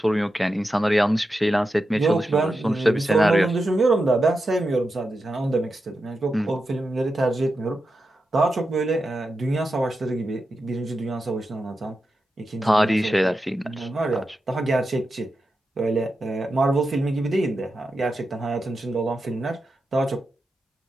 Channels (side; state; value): both; normal; correlation 0.89